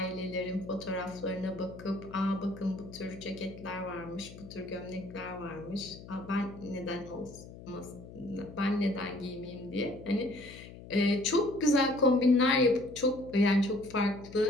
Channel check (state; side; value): noise; left; hum, 16 dB below the sound